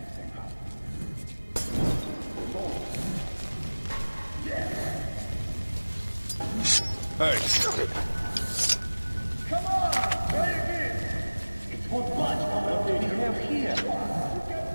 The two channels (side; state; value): both; inverted; correlation -1.00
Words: Hey! Come on! Try again! It's what budge we have here.